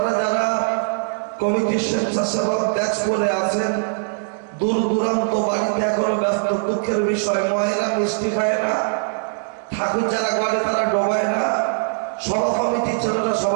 যারা কমিটির স্বেচ্ছাসেবক ব্যাচ করে আছেন, দূর দূরান্ত বাড়িতে এখনো ব্যস্ত, দুঃখের বিষয়, মহিলা মিষ্টি খায় না, ঠাকুর যারা করে তারা ডোবায় না, সভা কমিটির ছেলেরা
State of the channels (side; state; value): left; silent; digital silence